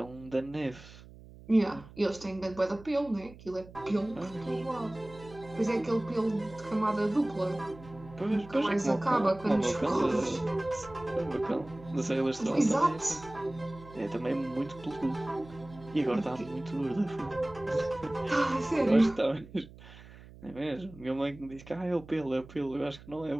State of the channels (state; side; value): noise; right; hum, 19 dB below the sound